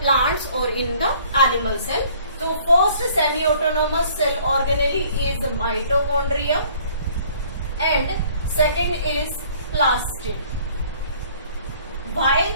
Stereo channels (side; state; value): both; inverted; correlation -0.56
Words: plants or in the animal cell. So first semi-autonomous cell organelle is mitochondria and second is plastid. Why